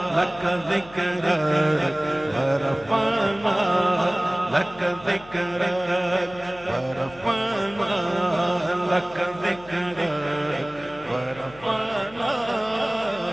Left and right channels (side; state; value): left; noise; hum, 21 dB below the sound